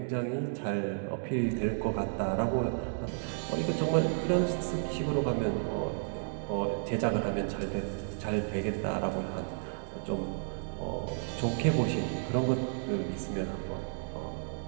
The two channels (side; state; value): left; silent; digital silence